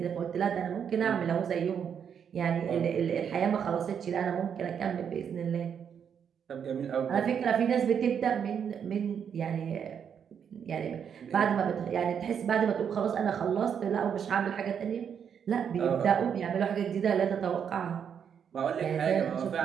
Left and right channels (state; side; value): quieter; left; 7.7 dB